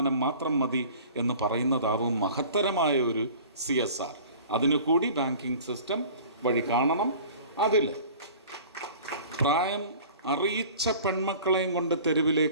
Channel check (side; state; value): both; inverted; correlation -0.44